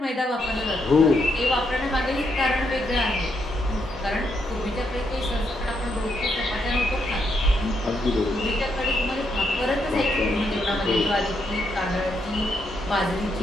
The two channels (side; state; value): both; normal; correlation 0.78